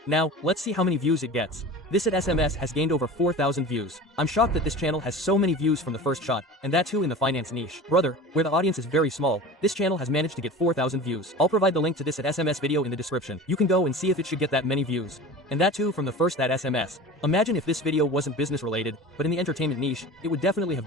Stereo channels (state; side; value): normal; both; correlation 0.35